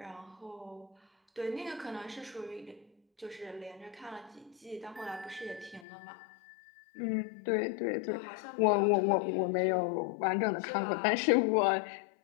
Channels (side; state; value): right; drops out; at 5.9 s